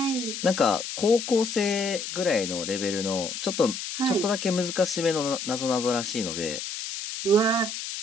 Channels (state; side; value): noise; left; hiss, 6 dB below the sound